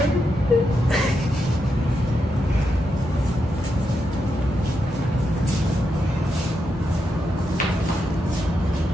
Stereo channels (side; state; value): both; normal; correlation 0.84